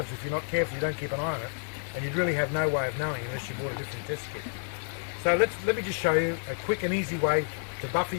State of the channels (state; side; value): silent; right; 58 dB below the other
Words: if you're not careful, you don't keep an eye on it, and you'd really have no way of knowing unless you bought a different test kit. So let me just show you a quick and easy way to buffer